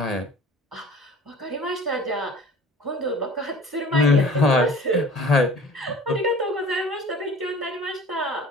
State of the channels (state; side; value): normal; both; correlation 0.44